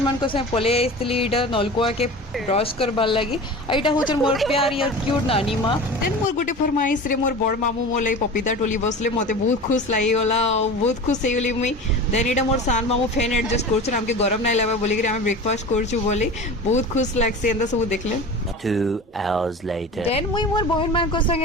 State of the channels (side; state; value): both; normal; correlation 0.34